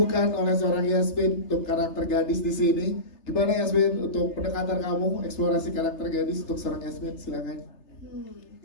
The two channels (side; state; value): right; late; 3.3 ms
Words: oleh seorang Yasmin untuk karakter gadis di sini. Gimana Yasmin untuk pendekatan kamu, eksplorasi karakter gadis untuk seorang Yasmin, silakan.